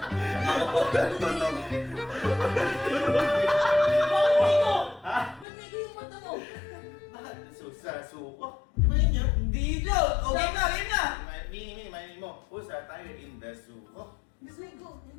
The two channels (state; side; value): drops out; right; at 5.5 s